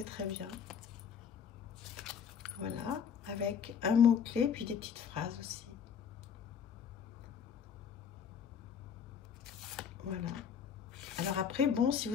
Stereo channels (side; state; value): right; quieter; 7.4 dB